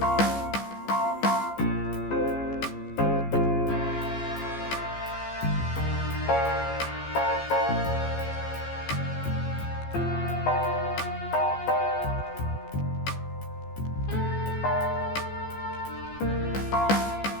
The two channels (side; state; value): right; late; 14 ms